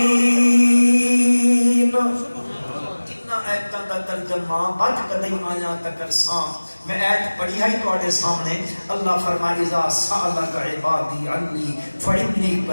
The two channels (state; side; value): inverted; both; correlation -1.00